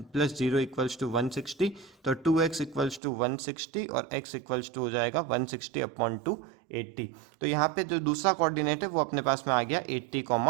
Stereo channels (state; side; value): drops out; left; at 3.0 s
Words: 0 equals to 160। तो 2x इक्वल्स टू 160 और x इक्वल्स टू हो जाएगा 160 अपॉन 280। तो यहाँ पे जो दूसरा कोऑर्डिनेट है वो अपने पास में आ गया